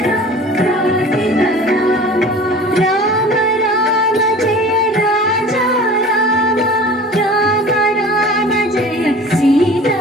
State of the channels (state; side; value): normal; both; correlation 0.41